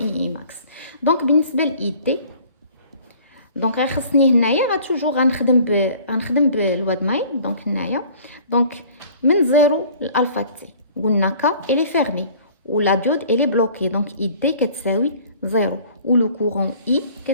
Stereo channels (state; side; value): inverted; both; correlation -0.50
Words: I max. Donc بالنسبه ل ID دونك خصني هنايا توجور غنخدم بالواد مايل. دونك هنايا دونك من 0 لالفا تي قلنا ك الي فيرمي ولا ديود الي بلوكي. دونك اي دي كتساوي 0 و لو كورون اي